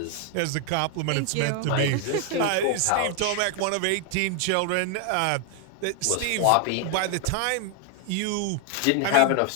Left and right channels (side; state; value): both; different; correlation 0.00